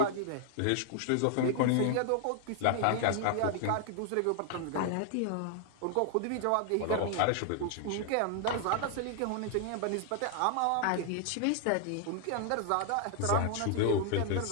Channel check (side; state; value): both; different; correlation 0.00